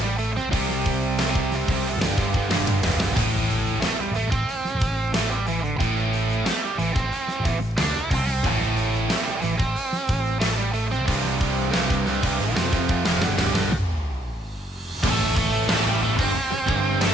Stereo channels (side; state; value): both; normal; correlation 0.73